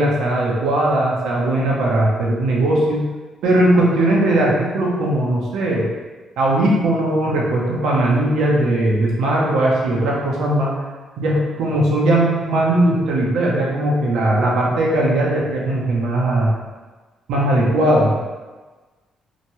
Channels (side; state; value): both; normal; correlation 0.70